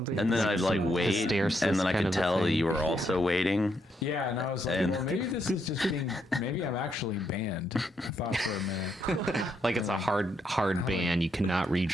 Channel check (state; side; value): normal; both; correlation 0.77